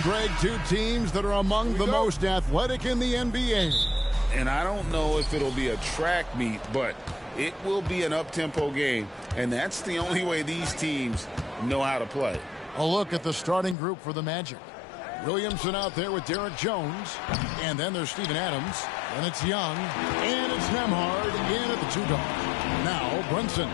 Greg. Two teams that are among the most athletic in the NBA. And I don't know if it'll be a track meet, but it will be an up-tempo game. And that's the only way these teams know how to play. A look at the starting group for the Magic. Williamson out there with Derek Jones. And then there's Steven Adams. And it's Young. And it's Nembhard in at the 2-dog. Now Brunson.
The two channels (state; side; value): drops out; right; at 13.8 s